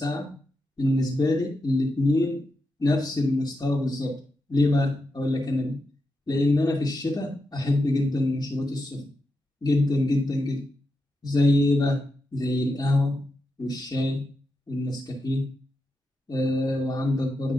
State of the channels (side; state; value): both; normal; correlation 0.87